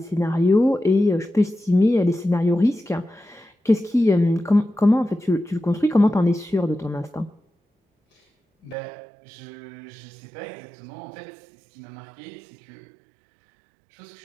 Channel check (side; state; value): left; drops out; at 8.8 s